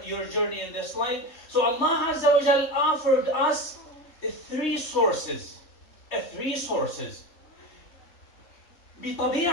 journey in this life? So Allah Azza wa Jal offered us three sources.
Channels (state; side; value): late; right; 3.2 ms